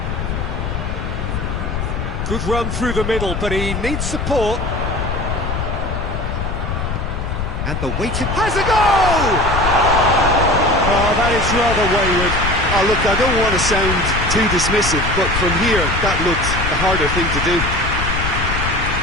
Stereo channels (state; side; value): noise; left; rumble, 3 dB below the sound